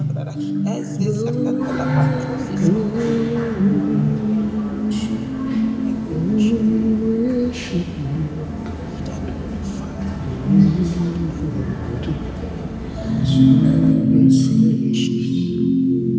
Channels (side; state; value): both; identical; correlation 1.00